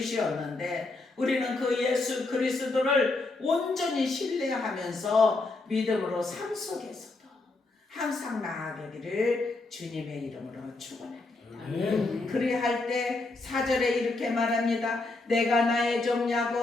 우리는 그 예수 그리스도를 온전히 신뢰하면서 믿음으로 삶 속에서도 항상 나아가기를 주님의 이름으로 축원합니다. 아멘. 그리할 때 4절에 이렇게 말합니다. 내가 나의 종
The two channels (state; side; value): quieter; right; 3.3 dB